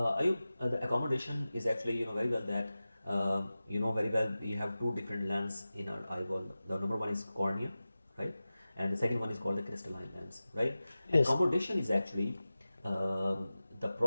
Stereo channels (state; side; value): inverted; both; correlation -0.96